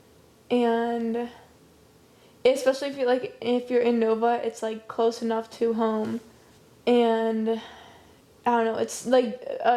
and especially if you're in Nova, it's like close enough to home, and I don't know, it's like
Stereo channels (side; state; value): both; identical; correlation 1.00